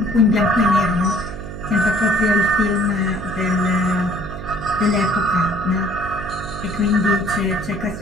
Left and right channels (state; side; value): noise; right; hum, 10 dB below the sound